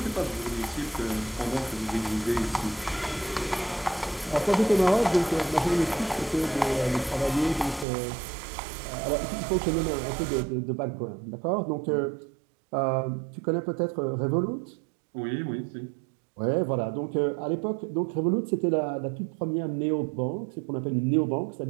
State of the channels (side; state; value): left; drops out; at 7.9 s